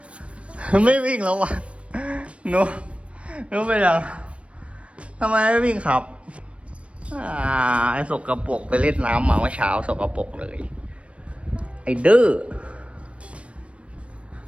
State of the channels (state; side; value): late; left; 0.061 ms